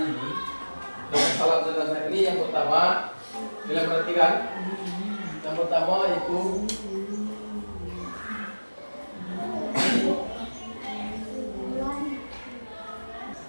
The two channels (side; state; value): both; inverted; correlation -1.00